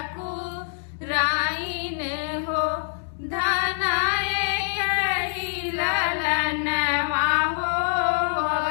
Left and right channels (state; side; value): silent; right; digital silence